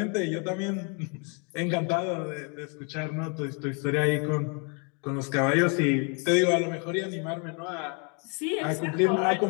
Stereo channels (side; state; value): right; quieter; 36.0 dB